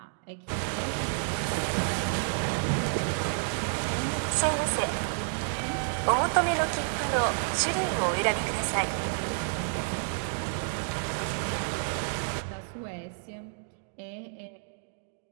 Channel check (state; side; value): silent; left; digital silence